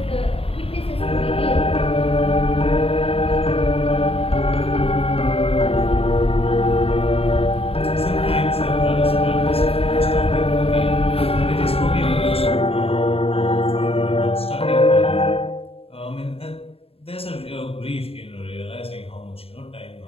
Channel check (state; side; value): late; right; 0.28 ms